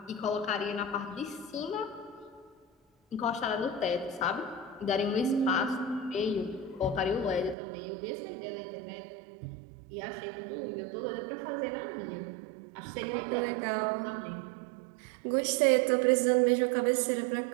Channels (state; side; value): drops out; left; at 7.6 s